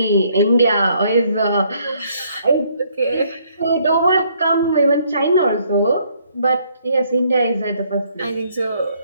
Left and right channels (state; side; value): inverted; both; correlation -0.67